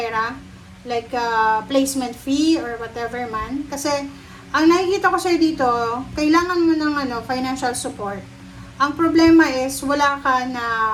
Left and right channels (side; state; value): both; identical; correlation 1.00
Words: like placement fee or whatever man. Kasi ang nakikita ko sa'yo dito, kailangan mo ng financial support. Ang problema is wala ka na